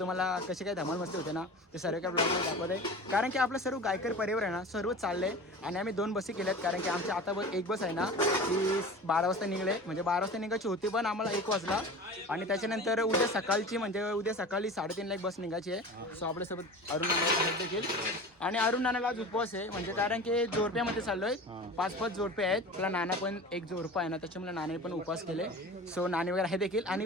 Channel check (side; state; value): both; normal; correlation 0.35